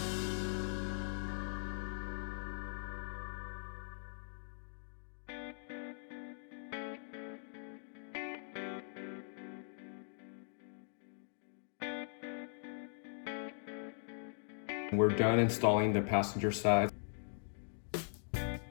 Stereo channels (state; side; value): silent; right; digital silence